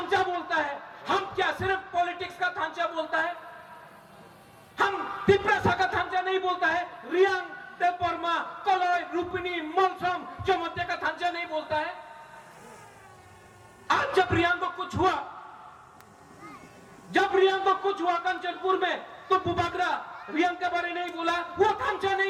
बोलता है, हम क्या सिर्फ पॉलिटिक्स का थांचा बोलता है? हम तिप्रासा का थांचा नहीं बोलता है, रियांग, देवबर्मा, कलय, रूपिणी, मलसम, चमत्या का थांचा नहीं बोलता है। आज जब रियांग को कुछ हुआ, जब रियांग को कुछ हुआ कंचनपुर में, तो बुबागरा रियांग के बारे नहीं बोला, वो थांचा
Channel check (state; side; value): identical; both; correlation 1.00